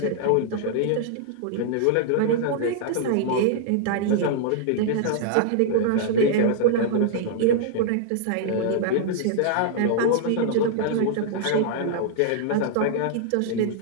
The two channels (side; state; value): both; different; correlation -0.01